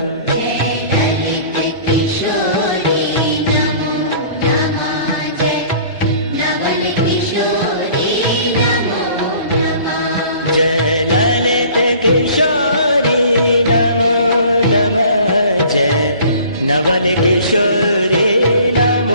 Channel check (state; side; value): inverted; both; correlation -0.49